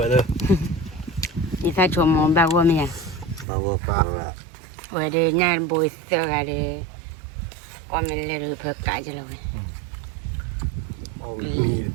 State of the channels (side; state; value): left; drops out; at 3.5 s